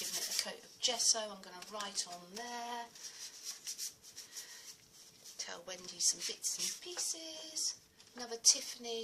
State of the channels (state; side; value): identical; both; correlation 1.00